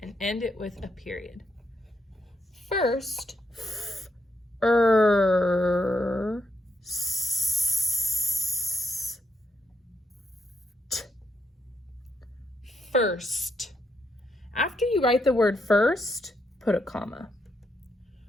and end it with a period. First, first. After you write the word first, put a comma.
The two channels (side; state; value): both; normal; correlation 0.79